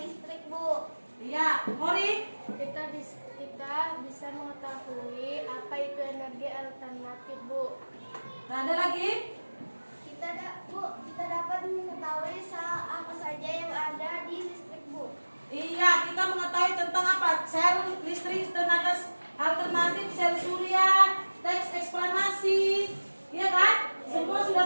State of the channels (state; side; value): inverted; both; correlation -1.00